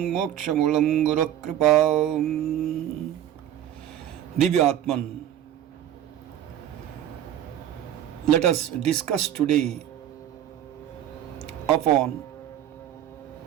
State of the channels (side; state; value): left; quieter; 11.2 dB